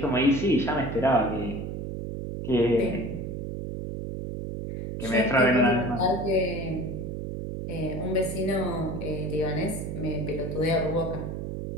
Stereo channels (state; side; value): noise; right; hum, 5 dB below the sound